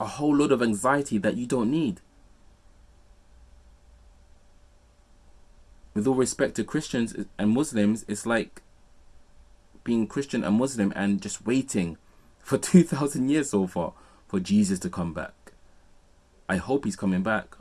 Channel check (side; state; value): both; identical; correlation 1.00